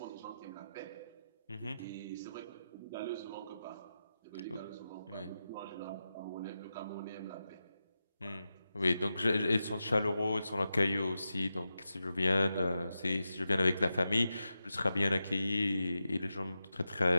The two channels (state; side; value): inverted; both; correlation -0.91